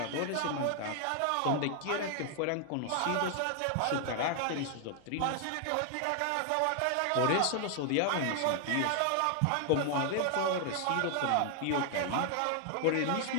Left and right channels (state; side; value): different; both; correlation 0.00